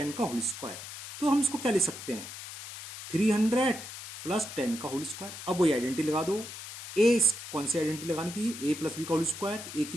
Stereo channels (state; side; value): noise; left; hiss, 11 dB below the sound